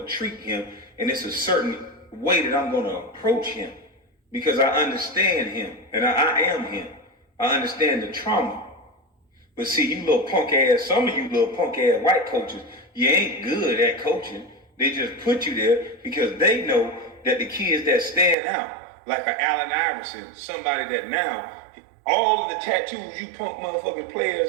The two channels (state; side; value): drops out; left; at 18.4 s